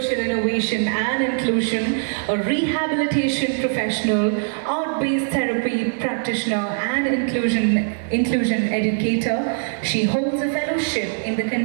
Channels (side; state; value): left; silent; 64 dB below the other